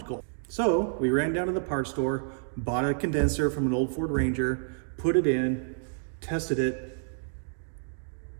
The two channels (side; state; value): left; silent; digital silence